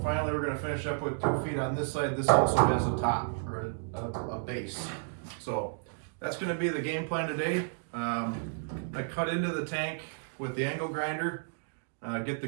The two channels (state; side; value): silent; left; digital silence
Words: finally we're going to finish up with 2 feet on this side. This also has a top or a base. So that's going to be the game plan today. I cut into the tank with the angle grinder, get the